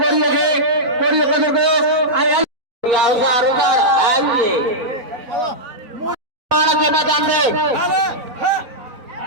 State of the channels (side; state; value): left; late; 4.0 ms